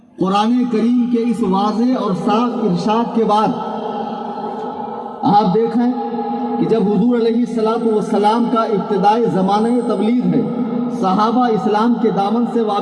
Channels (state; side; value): identical; both; correlation 1.00